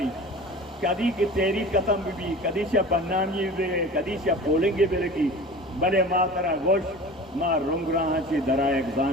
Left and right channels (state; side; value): normal; both; correlation 0.37